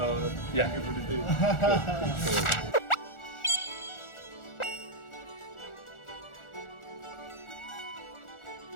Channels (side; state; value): right; late; 1.4 ms